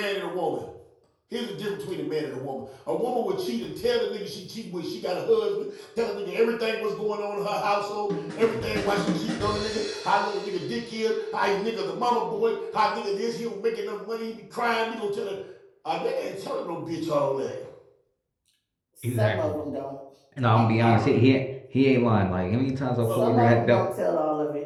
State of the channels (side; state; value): both; identical; correlation 1.00